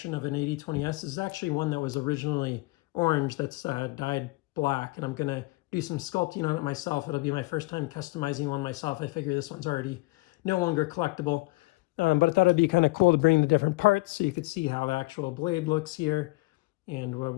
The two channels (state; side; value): quieter; right; 23.6 dB